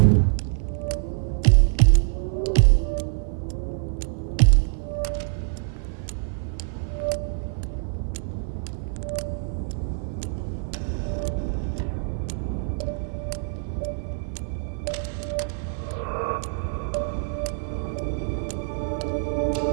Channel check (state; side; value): silent; left; 56 dB below the other